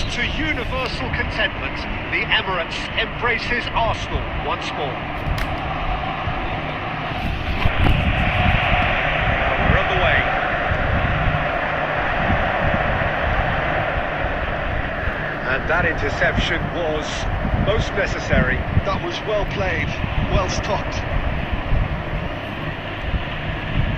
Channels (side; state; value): both; identical; correlation 1.00